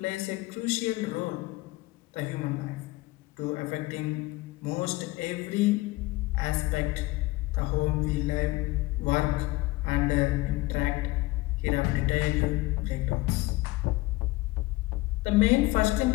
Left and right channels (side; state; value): right; quieter; 20.5 dB